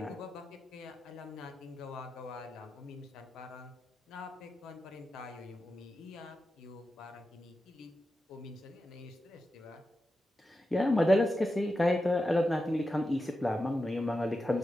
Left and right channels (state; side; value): normal; both; correlation 0.90